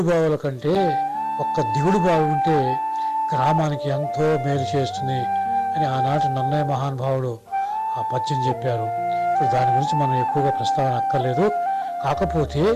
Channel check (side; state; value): both; identical; correlation 1.00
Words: బావుల కంటే ఒక్క దిగుడు బావి ఉంటే గ్రామానికి ఎంతో మేలు చేస్తుంది అని ఆనాటి నన్నయ్య మహానుభావుడు ఆ పద్యం చెప్పారు. ఇప్పుడు దాని గురించి మనం ఎక్కువగా ప్రస్తావన అక్కర్లేదు. కాకపోతే